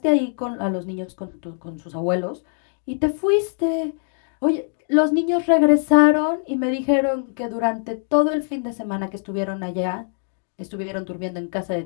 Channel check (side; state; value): right; silent; 64 dB below the other